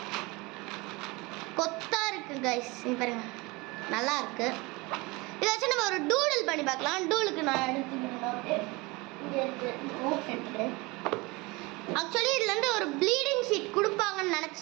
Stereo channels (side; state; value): left; quieter; 24.5 dB